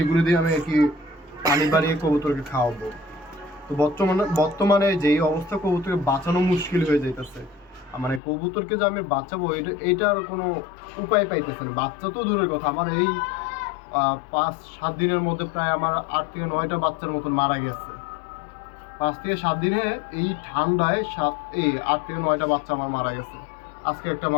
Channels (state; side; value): drops out; right; at 8.2 s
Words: দিয়ে আমি আর কি পানি বাড়িয়ে কবুতরকে খাওয়াবো। তো বর্তমানে যেই অবস্থা কবুতরকে বাঁচানো মুশকিল হয়ে যাইতেছে, মানে কবুতরকে যে আমি বাঁচাবো এটার কোনো উপায় পাইতেছে না। বাচ্চা তো দূরের কথা, আমার এই 5-7 দিনের মধ্যে প্রায় আমার 8 থেকে 9টা বাচ্চার মতন মারা গেছে। 5 থেকে 7 দিনে এই ঠান্ডায় 8 থেকে 9টা বাচ্চা আমার মারা গেছে। আজকে একটা